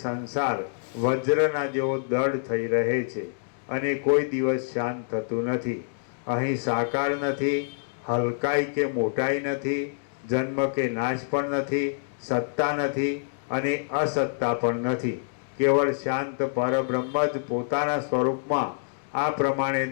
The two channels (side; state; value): right; silent; digital silence